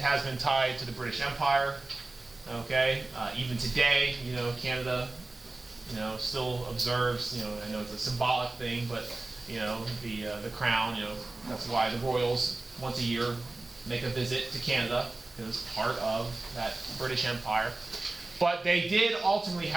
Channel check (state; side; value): quieter; left; 3.1 dB